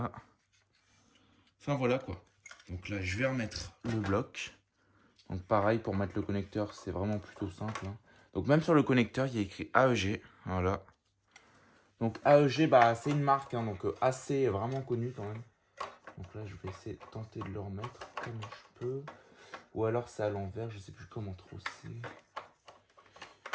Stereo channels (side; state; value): both; identical; correlation 1.00